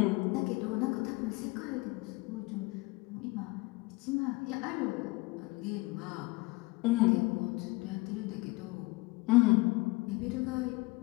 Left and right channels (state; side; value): quieter; right; 23.5 dB